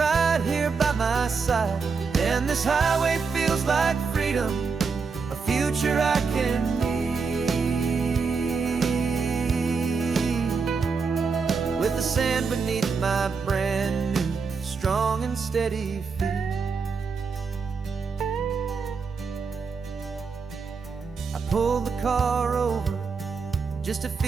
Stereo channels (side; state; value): left; quieter; 5.1 dB